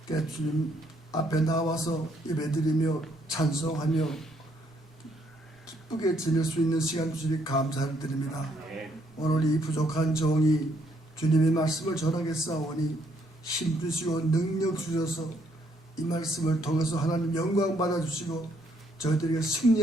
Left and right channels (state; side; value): normal; both; correlation 0.70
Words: 주님 앞에 나와서 예배드리며 찬송하며 기쁘게 지낼 수 있는 시간 주시니 감사를 드립니다. 오늘 이 부족한 종이 주님의 말씀을 전하겠사오니 힘주시고 능력 주셔서 이 말씀을 통해서 하나님 영광 받아주시고 저희들에게